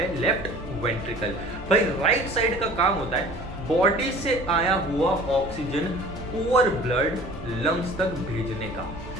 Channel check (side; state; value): both; normal; correlation 0.46